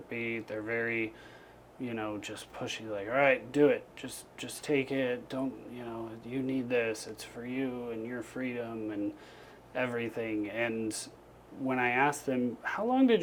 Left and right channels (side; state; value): both; identical; correlation 1.00